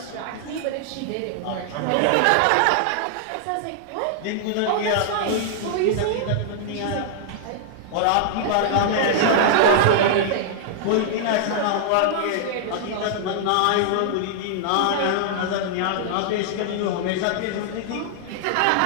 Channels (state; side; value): different; both; correlation -0.01